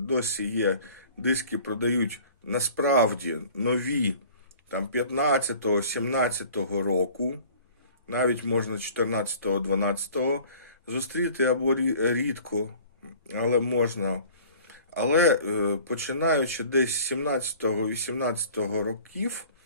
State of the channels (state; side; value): inverted; both; correlation -0.48